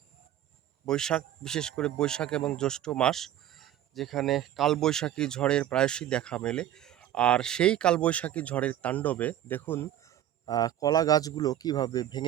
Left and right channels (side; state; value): left; quieter; 11.9 dB